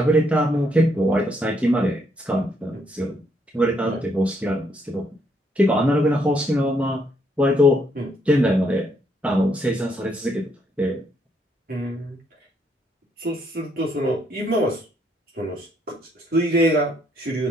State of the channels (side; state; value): both; normal; correlation 0.72